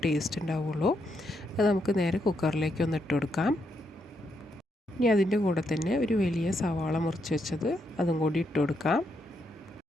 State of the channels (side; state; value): both; normal; correlation 0.79